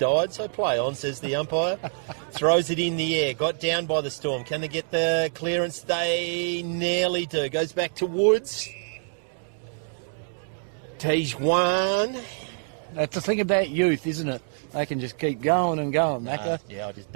so play on, says the umpire. Throws it in the air. Got down by the Storm. Can they get the clearance? They nearly do. Goes back to Woods. Tijuan. That's the thing about youth, isn't it? They can just keep going and going, Macca. Yeah, I'll just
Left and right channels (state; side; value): silent; left; digital silence